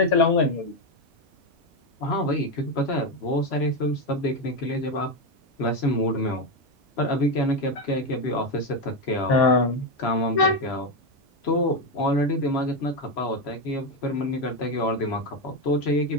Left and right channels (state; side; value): normal; both; correlation 0.10